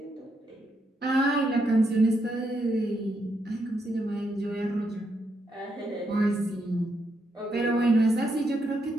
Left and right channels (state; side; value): normal; both; correlation 0.79